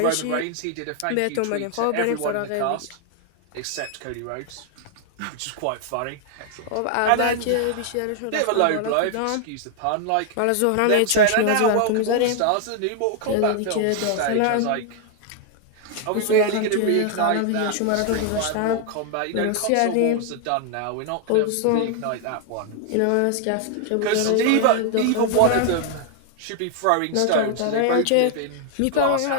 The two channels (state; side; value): different; both; correlation 0.00